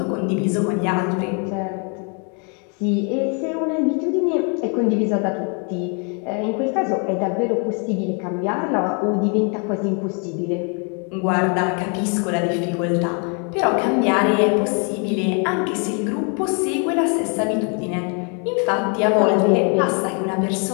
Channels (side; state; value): right; quieter; 37.7 dB